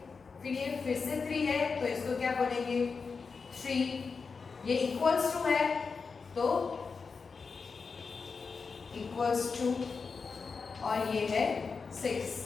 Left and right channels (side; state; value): right; quieter; 5.0 dB